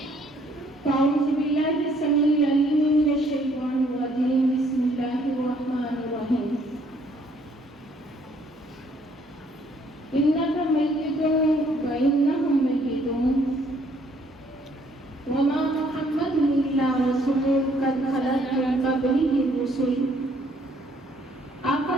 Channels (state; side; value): normal; both; correlation 0.64